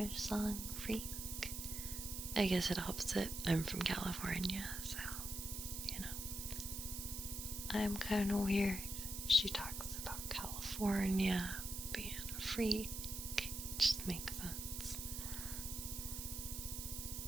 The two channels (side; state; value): right; noise; hiss, 5 dB below the sound